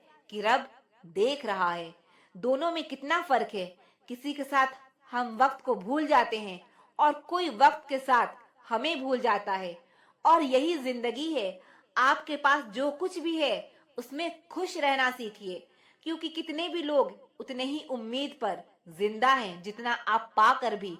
कि रब देख रहा है। दोनों में कितना फर्क है। किसी के साथ हम वक्त को भूल जाते हैं और कोई वक्त के साथ हमें भूल जाता है। और यही जिंदगी है। आपके पास जो कुछ भी है उसमें खुश रहना सीखिए, क्योंकि कितने भी लोग उतने ही उम्मीद पर जिंदा हैं जितना आप पाकर भी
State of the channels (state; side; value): identical; both; correlation 1.00